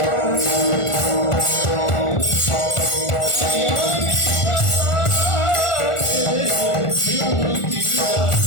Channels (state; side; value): late; right; 1.4 ms